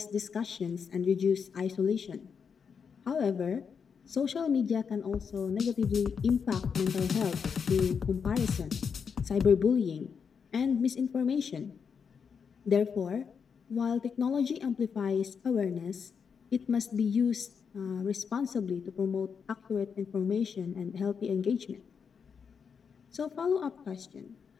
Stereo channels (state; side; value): quieter; right; 6.4 dB